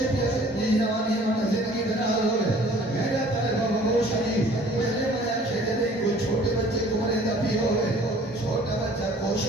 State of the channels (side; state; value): both; normal; correlation 0.52